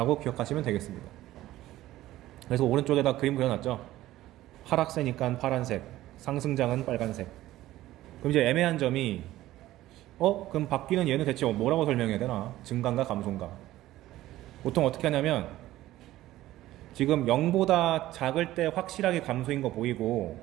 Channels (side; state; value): left; quieter; 15.3 dB